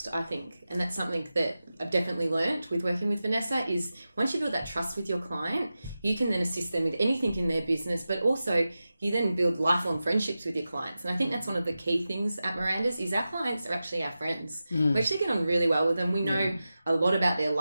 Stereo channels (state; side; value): inverted; both; correlation -0.93